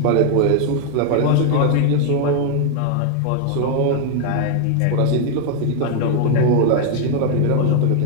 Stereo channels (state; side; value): different; both; correlation 0.00